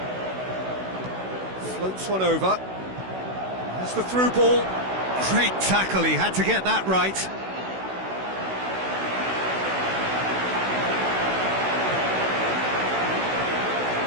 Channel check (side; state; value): left; late; 16 ms